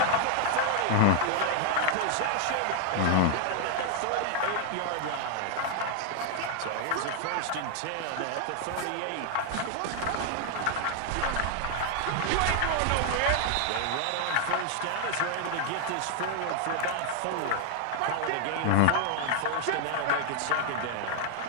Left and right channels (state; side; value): different; both; correlation 0.00